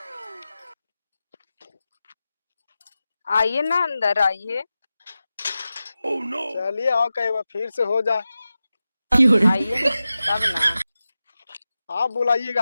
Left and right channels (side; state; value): both; inverted; correlation -0.94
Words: आइए ना, अंदर आइए। चलिए आओ, कई बार फिर से हो जाए। आइए तब ना। आप